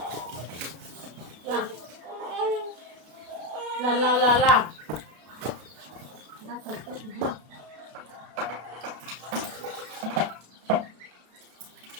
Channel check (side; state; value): left; late; 32 ms